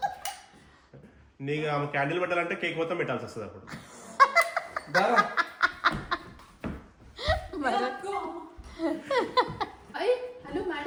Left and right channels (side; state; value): both; identical; correlation 1.00